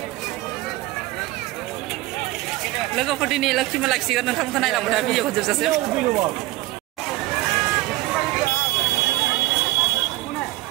लोगोफोर दिनै लोक्षि मेला खिसिगोन नोंथांमोनखौ नायलांबाय था भिडिअखौ जोबजासिम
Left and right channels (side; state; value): left; quieter; 18.3 dB